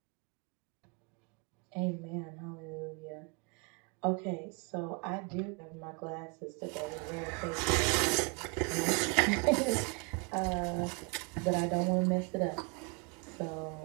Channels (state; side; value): quieter; left; 33.8 dB